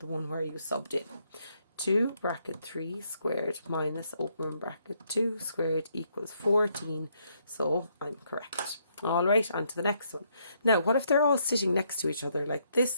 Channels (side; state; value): both; inverted; correlation -0.73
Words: one where you subbed in. 2 bracket 3 squared minus, open bracket, 2 squared equals 14. So I'm correct. All right, on to the next one. Now, what if they're all sitting next to each other like